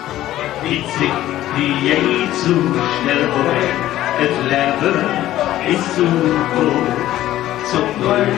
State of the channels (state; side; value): quieter; right; 14.0 dB